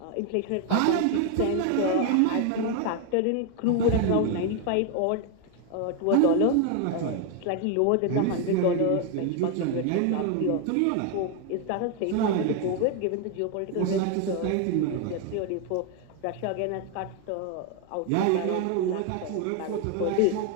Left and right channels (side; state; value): both; different; correlation 0.01